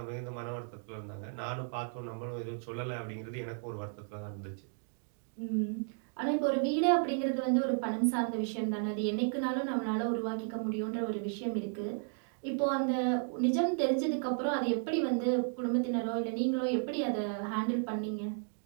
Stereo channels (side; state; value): left; silent; 55 dB below the other